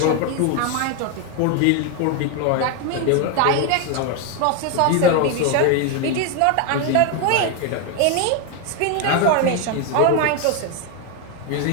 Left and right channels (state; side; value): different; both; correlation 0.01